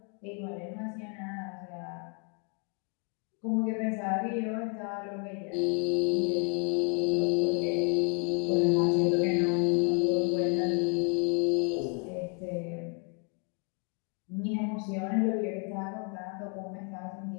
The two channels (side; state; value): right; quieter; 38.5 dB